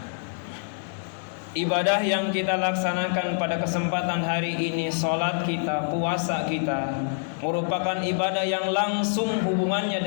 Ibadah yang kita laksanakan pada kesempatan hari ini, salat kita, puasa kita, merupakan ibadah yang langsung hubungannya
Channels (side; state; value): right; silent; digital silence